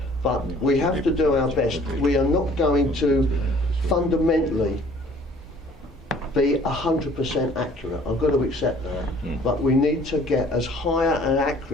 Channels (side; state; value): both; normal; correlation 0.55